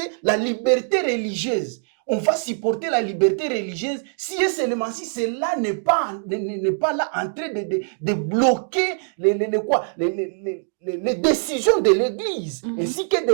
la liberté religieuse, on va supporter la liberté religieuse si et seulement si cela n'est pas là en train de bloquer les décisions de l'Église ainsi que de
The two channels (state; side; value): silent; left; digital silence